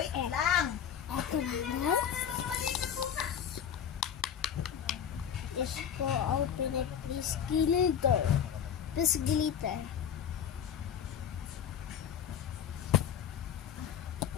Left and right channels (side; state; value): right; quieter; 8.6 dB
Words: lang. Ito na. Is go open it, please glitter. Please glitter.